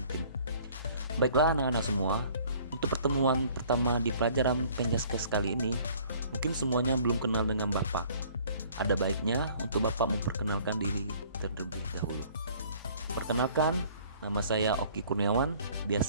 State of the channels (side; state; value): both; inverted; correlation -0.55